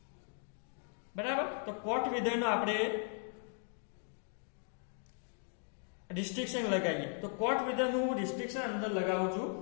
બરાબર. તો કોટ વિધેયનો આપણે રિસ્ટ્રિક્શન લગાવીએ. તો કોટ વિધેયનું હું રિસ્ટ્રિક્શન અંદર લગાવું છું.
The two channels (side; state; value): right; silent; 53 dB below the other